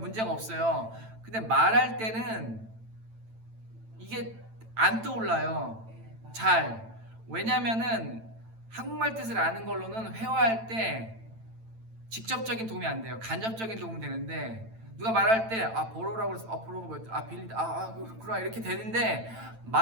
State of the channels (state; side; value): late; left; 9.0 ms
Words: 없어요. 근데 말할 때는 이게 안 떠올라요. 잘. 왜냐면은 한국말 뜻을 아는 걸로는 회화할 때 직접적인 도움이 안 돼요. 간접적인 도움은 되는데 누가 말할 때 borrow라고 해서 borrow가 뭐였지? 빌리다. 그렇구나 이렇게 되는데